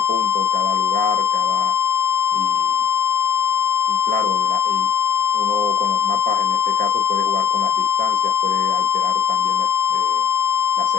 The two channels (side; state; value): right; quieter; 7.4 dB